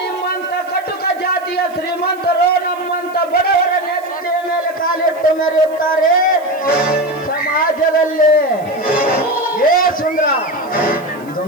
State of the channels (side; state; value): right; noise; hiss, 26 dB below the sound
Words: ಕಟುಕ ಜಾತಿಯ ಶ್ರೀಮಂತರು ನಮ್ಮಂತ ಬಡವರ ನೆತ್ತಿಯ ಮೇಲೆ ಕಾಲಿಟ್ಟು ಮೆರೆಯುತ್ತಾರೆ ಸಮಾಜದಲ್ಲಿ. ಏ ಸುಂದರ,